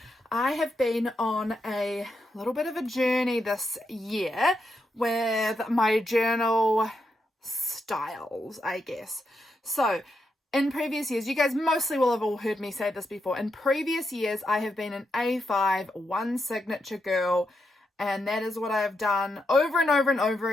I have been on a little bit of a journey this year with my journal styles, I guess. So in previous years, you guys mostly will have all heard me say this before. In previous years, I have been an A5 one signature girl, and that is what I have done over and over and over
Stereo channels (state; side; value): normal; both; correlation 0.83